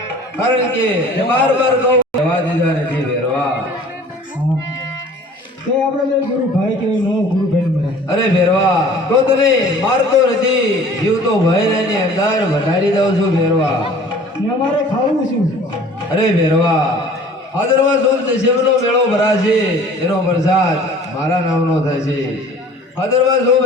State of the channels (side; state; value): both; normal; correlation 0.48